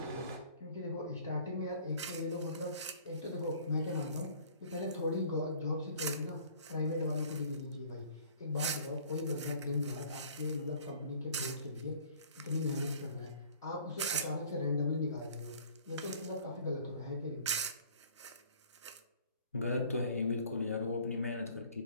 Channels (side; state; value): both; inverted; correlation -0.52